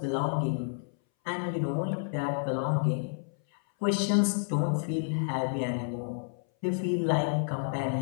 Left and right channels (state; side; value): silent; right; 58 dB below the other